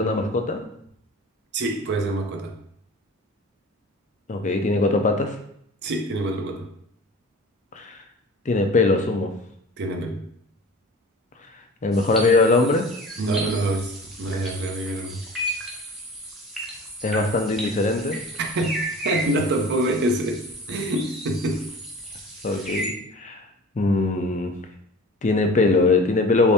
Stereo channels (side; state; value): both; normal; correlation 0.40